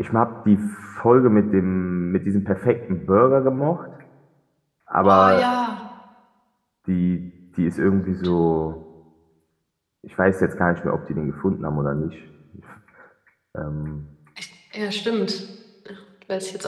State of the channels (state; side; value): identical; both; correlation 1.00